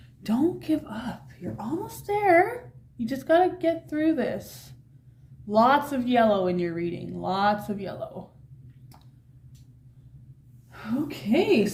Don't give up. You're almost there. You just got to get through this. Lots of yellow in your reading. Lots of yellow. Okay,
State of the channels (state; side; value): identical; both; correlation 1.00